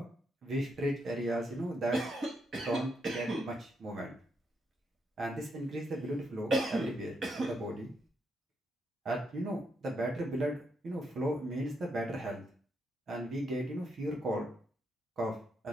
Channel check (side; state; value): both; normal; correlation 0.79